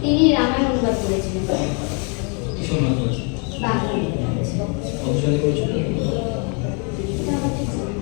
তিনি রামায়ণ অনুবাদ করেছিলেন। কিসব অনুবাদ করেছেন? বাংলা অনুবাদ করেছিলেন। কত সালে করেছেন? এটা আমার ঠিক জানা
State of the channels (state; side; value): quieter; right; 36.7 dB